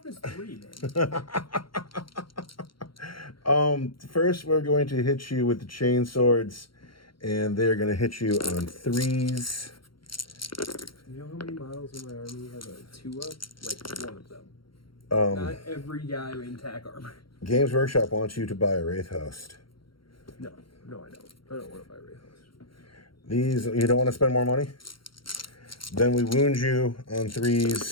3, man. First, we're going to hit you with the chain swords, and they're going to hit you on 3s. You know how many models in my army have a 2-up? Like 1 of them. Not every guy in tack armor. Games Workshop wants you to buy a Wraith Host. No, I don't. I don't want to buy Wraith Host. These, you don't want to spend more money? Then we wound you on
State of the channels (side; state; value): right; late; 0.73 ms